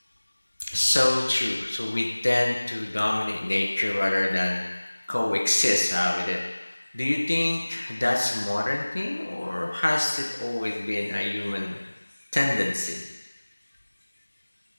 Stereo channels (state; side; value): inverted; both; correlation -1.00